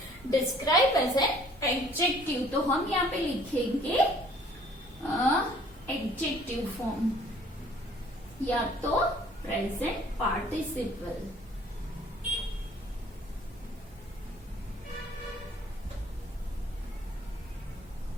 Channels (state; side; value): normal; both; correlation 0.56